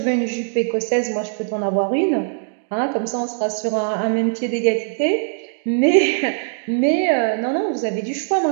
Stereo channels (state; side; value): silent; left; 65 dB below the other